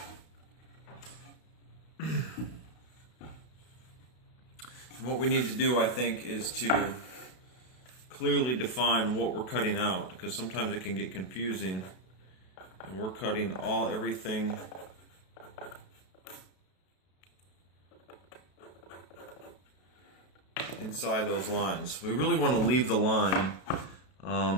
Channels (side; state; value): right; late; 32 ms